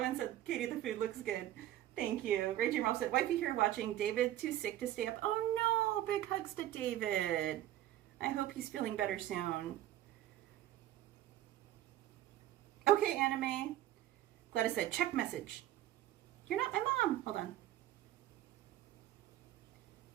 said, "Katie, the food looks good." Thank you. Raging Ralph said, "Wifey here watching. David too sick to stay up." Oh no, big hugs to David. I hope he's feeling better soon. Okay, Anime. Gladys said, "Check message." You're not my mom. Hold on.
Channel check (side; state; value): left; quieter; 13.4 dB